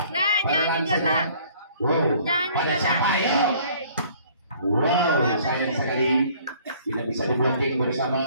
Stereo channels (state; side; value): inverted; both; correlation -0.56